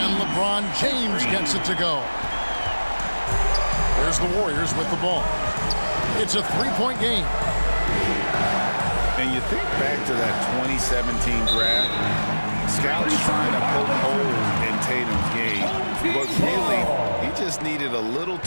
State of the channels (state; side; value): inverted; both; correlation -1.00